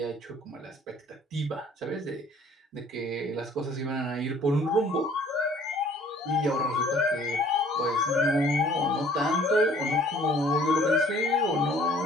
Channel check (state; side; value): normal; both; correlation 0.55